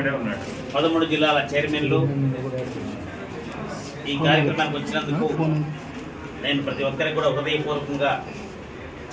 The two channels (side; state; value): both; identical; correlation 1.00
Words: 13 జిల్లాల చైర్మన్లు ఈ కార్యక్రమానికి వచ్చినందుకు నేను ప్రతి ఒక్కరికి కూడా హృదయపూర్వకంగా